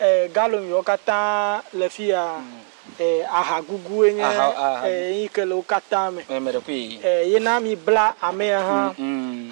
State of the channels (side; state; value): left; silent; 57 dB below the other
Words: galom yo kata le fia ahagugu enye ikele ukata me mere kwi yena mi bla ame ha